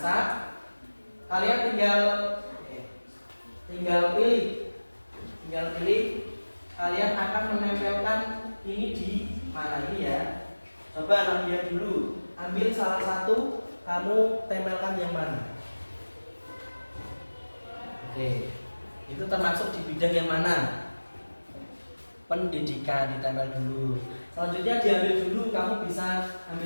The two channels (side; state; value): both; inverted; correlation -1.00